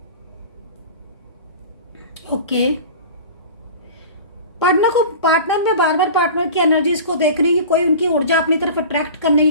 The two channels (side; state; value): both; inverted; correlation -0.37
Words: ओके। पार्टनर में बार बार पार्टनर की एनर्जीज को देख रही है कि कोई उनकी ऊर्जा अपनी तरफ अट्रैक्ट करने